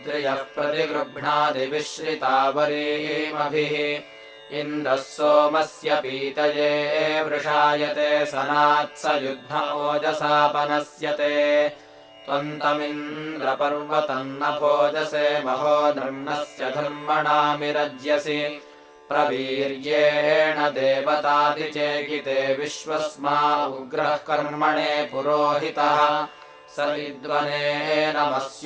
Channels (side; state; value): both; identical; correlation 1.00